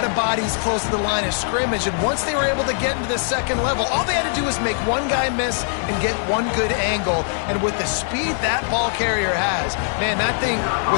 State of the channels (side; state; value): right; silent; digital silence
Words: of bodies close to the line of scrimmage, and once they were able to get into the second level, all they had to do was make one guy miss and get one good angle. And with the speed that ball carrier has, man, that thing